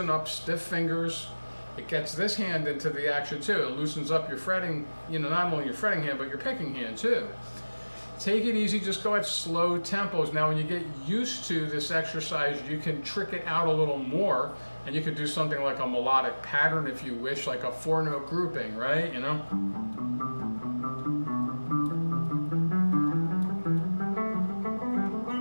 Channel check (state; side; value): inverted; both; correlation -1.00